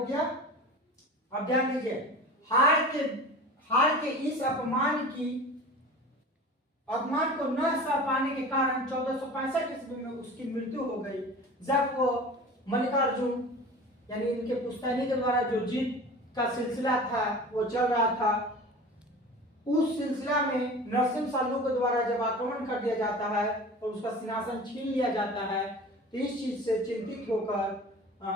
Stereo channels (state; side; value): normal; both; correlation 0.37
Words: गया। अब ध्यान दीजिए, हार के इस अपमान को न सह पाने के कारण 1465 ईस्वी में उसकी मृत्यु हो गई, जब वो मल्लिकार्जुन यानी इनके पुश्तैनी के द्वारा जो जीत का सिलसिला था वो चल रहा था। उस सिलसिला में नरसिंह साल्लू के द्वारा जब आक्रमण कर दिया जाता है और उसका सिंहासन छीन लिया जाता है, तो इस चीज से चिंतित होकर